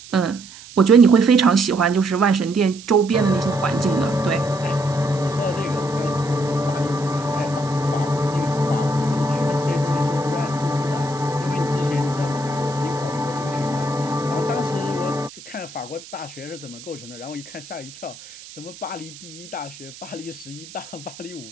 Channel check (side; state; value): right; noise; hiss, 17 dB below the sound